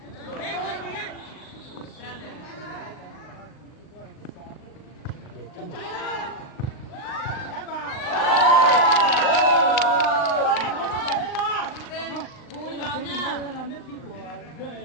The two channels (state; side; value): late; right; 39 ms